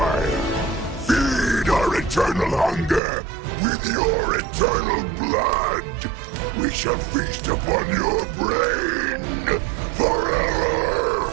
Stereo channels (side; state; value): left; drops out; at 3.0 s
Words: Feed our eternal hunger with your eternal blood. We shall feast upon your brain